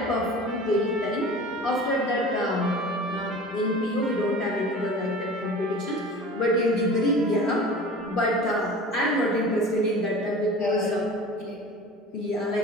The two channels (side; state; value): both; normal; correlation 0.38